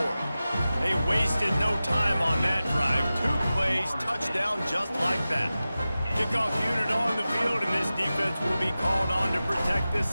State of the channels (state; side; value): inverted; both; correlation -0.95